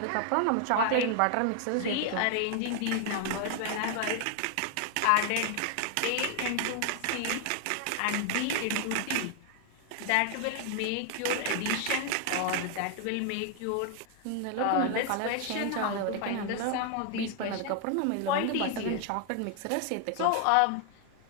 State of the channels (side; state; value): both; different; correlation 0.00